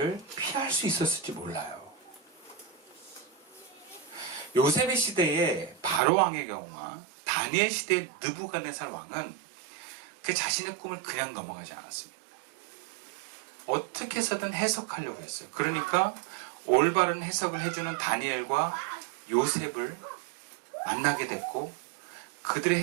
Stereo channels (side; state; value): left; drops out; at 6.0 s